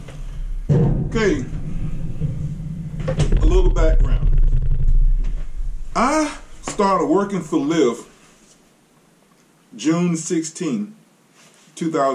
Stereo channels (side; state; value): both; identical; correlation 1.00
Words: Okay, a little background. I started working for Lyft June 16,